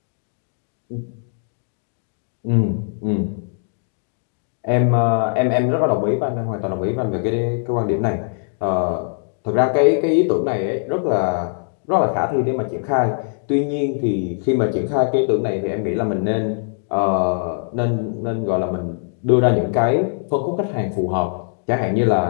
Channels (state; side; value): silent; right; digital silence